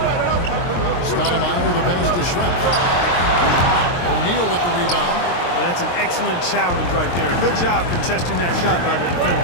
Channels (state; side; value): late; right; 23 ms